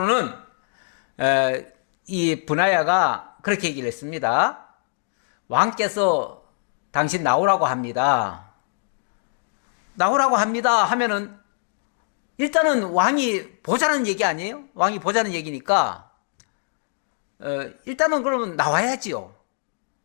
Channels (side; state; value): right; silent; digital silence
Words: 이 브나야가 그렇게 얘기를 했습니다. 왕께서 당신 나오라고 합니다. 나오라고 합니다 하면은 일단은 왕이 보자는 얘기 아니에요? 왕이 보자는 얘기니까 일단은 그러면 나와야지요.